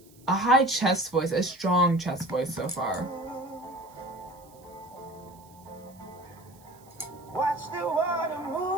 a high chest voice, a strong chest voice so far.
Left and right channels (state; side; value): noise; right; hiss, 27 dB below the sound